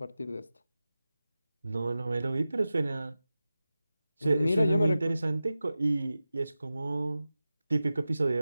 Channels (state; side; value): inverted; both; correlation -0.94